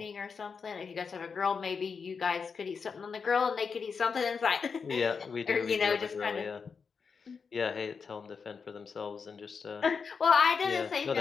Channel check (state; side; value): quieter; right; 5.6 dB